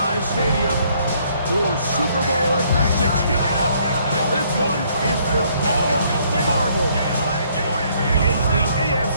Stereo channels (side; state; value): both; inverted; correlation -0.66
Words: Stadium for Super Bowl 60. This one is for all the marbles. It's the